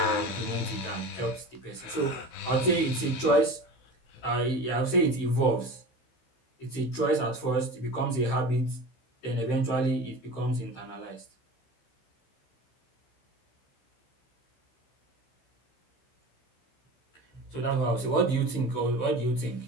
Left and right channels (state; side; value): late; right; 15 ms